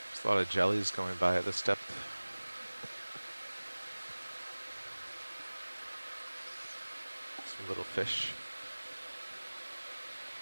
There's a lot of jellies going by at this depth. Some little fish.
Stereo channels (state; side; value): inverted; both; correlation -1.00